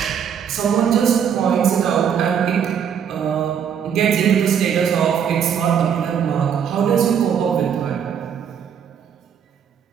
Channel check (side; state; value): left; quieter; 8.0 dB